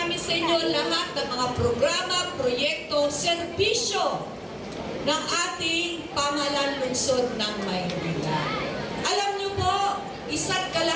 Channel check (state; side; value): identical; both; correlation 1.00